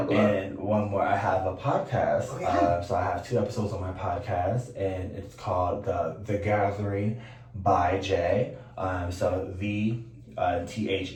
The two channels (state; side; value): identical; both; correlation 1.00